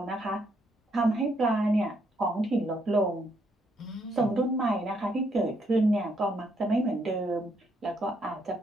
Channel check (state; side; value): normal; both; correlation 0.73